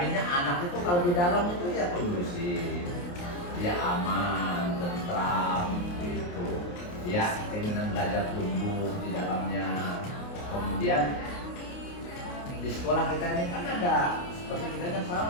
anak itu kalau di dalam itu ya kondusif, dia aman, tentram, gitu. Ya keinginan belajar tumbuh di dalamnya. Kemudian di sekolah kita ini kan ada, seperti kita kan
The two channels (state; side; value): late; right; 28 ms